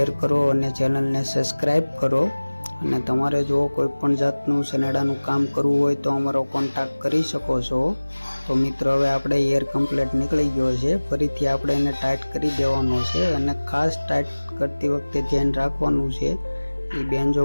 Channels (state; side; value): inverted; both; correlation -1.00